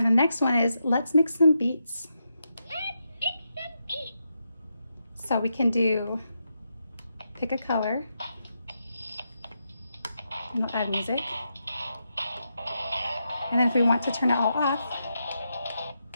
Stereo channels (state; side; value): inverted; both; correlation -0.84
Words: the next one is Let's Mix Some Beats. Let's mix some beats! So we can pick a color, and we'll add music. And then if we want to turn it all off,